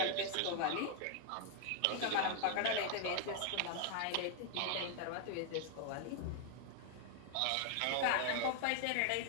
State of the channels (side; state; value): both; different; correlation 0.00